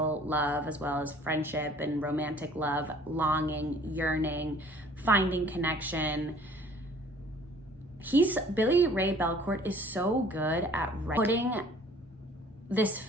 love, as well as friendship and romantic love, longing, yearning, finding connection. Billy Ray Belcourt is so good at putting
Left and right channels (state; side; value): normal; both; correlation 0.53